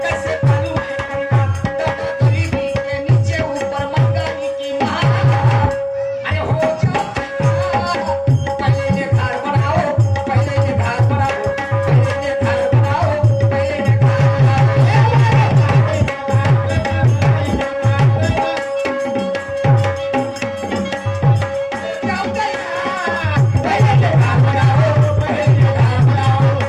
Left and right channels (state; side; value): identical; both; correlation 1.00